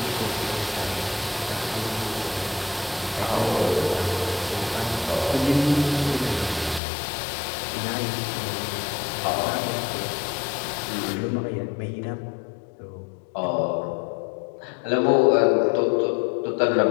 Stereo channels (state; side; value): drops out; right; at 6.8 s